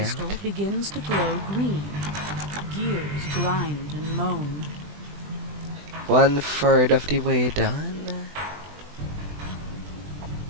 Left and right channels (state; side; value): late; left; 20 ms